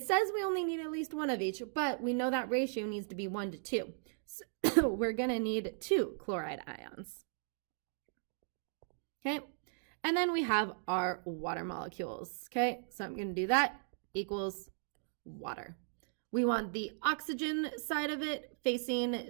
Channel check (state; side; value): silent; left; digital silence